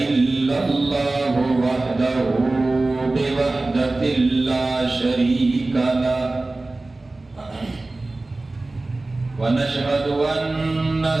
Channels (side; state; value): left; quieter; 3.1 dB